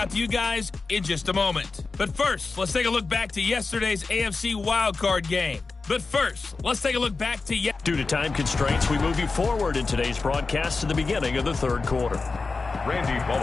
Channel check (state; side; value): quieter; right; 4.0 dB